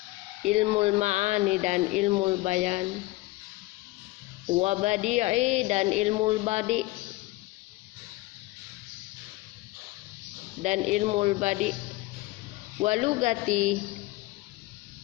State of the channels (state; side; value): quieter; right; 20.0 dB